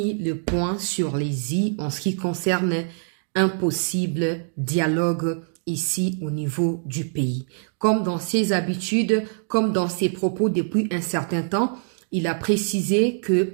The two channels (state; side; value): silent; left; digital silence